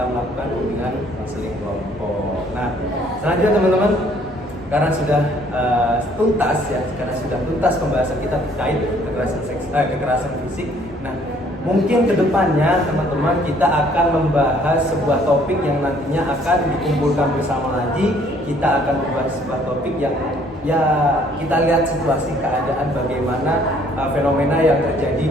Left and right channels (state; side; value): normal; both; correlation 0.61